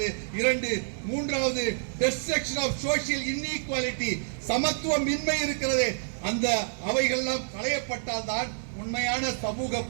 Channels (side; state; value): left; silent; digital silence